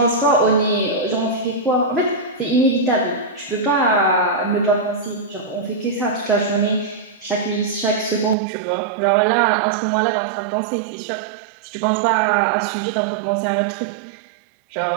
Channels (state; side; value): drops out; left; at 8.3 s